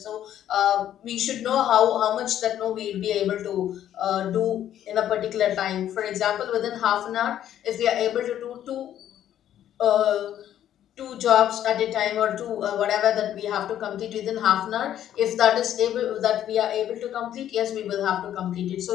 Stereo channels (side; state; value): right; quieter; 11.1 dB